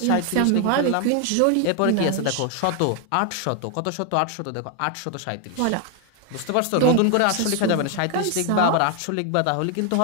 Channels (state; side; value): different; both; correlation 0.01